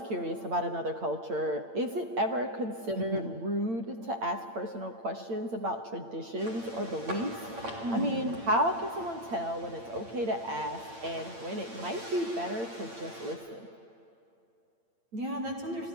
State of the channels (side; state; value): left; late; 8.8 ms